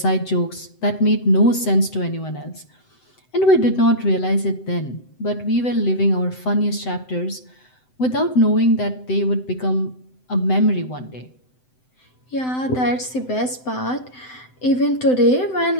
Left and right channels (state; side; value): late; right; 7.8 ms